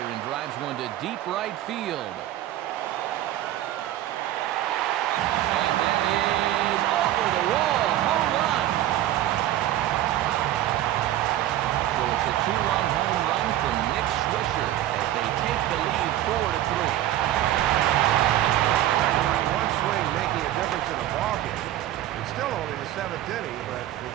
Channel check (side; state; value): left; quieter; 13.4 dB